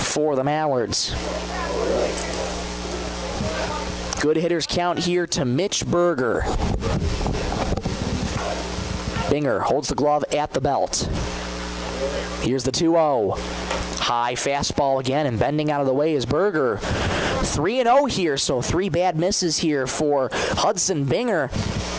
the Mallards. Good hitters count here to Mitch Berger. Binger holds the glove at the belt. Here's the 2-0. High fastball again, and bending out of the way is Berger. 3-0 here, so 3 bad misses here for Hudson Binger.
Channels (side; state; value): both; identical; correlation 1.00